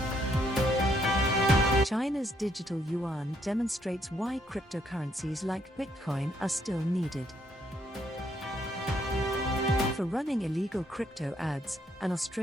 China's digital yuan demonstrates why cryptocurrencies like Bitcoin are still needed. For running illegal crypto ads, an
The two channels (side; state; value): both; normal; correlation 0.71